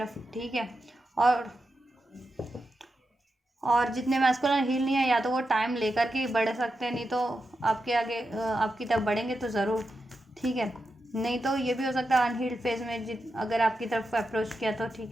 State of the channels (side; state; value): both; normal; correlation 0.88